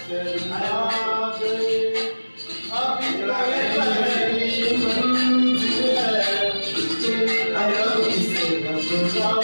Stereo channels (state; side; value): inverted; both; correlation -1.00